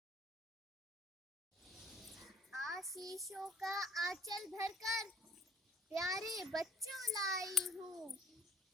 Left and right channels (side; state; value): both; normal; correlation 0.57